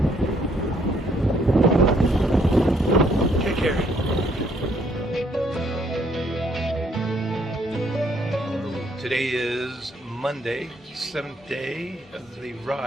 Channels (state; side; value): normal; both; correlation 0.68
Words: Take care. Today is Monday, 7th day of the